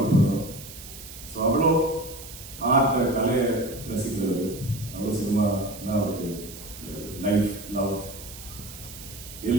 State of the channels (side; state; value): right; noise; hiss, 14 dB below the sound